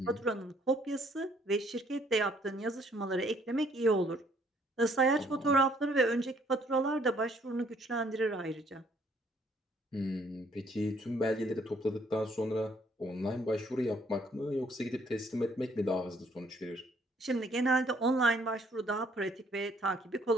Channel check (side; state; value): both; normal; correlation 0.65